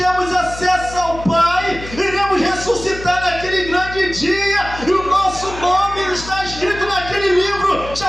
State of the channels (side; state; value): left; noise; hum, 13 dB below the sound